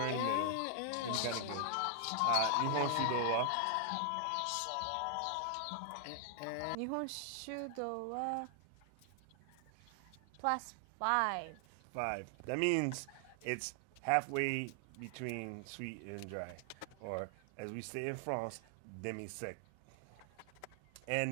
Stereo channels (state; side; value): different; both; correlation 0.00